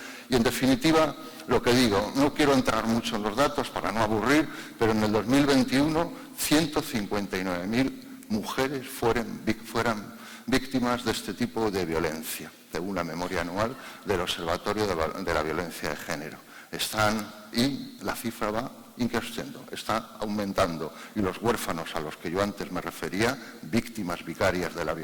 y en definitiva, lo que digo, no quiero entrar mucho en los datos para no aburrir, pero en el 2021 159.000 mujeres fueran víctimas de este tipo de violencia, según la memoria anual del Observatorio de la Violencia de Género. Y la cifra va increciendo, está aumentando, y los huérfanos a los que yo antes me refería, víctimas vicarias de la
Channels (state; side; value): identical; both; correlation 1.00